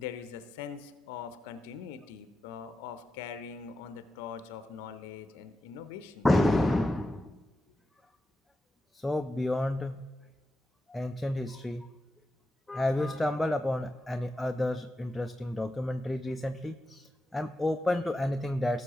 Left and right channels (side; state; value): both; normal; correlation 0.90